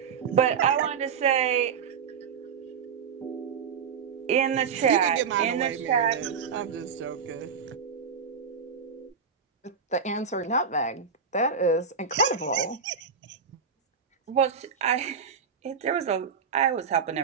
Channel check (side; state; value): left; quieter; 6.2 dB